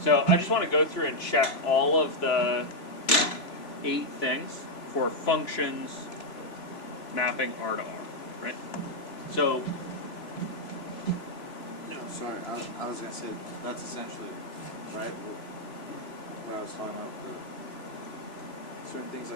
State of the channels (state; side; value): late; right; 3.0 ms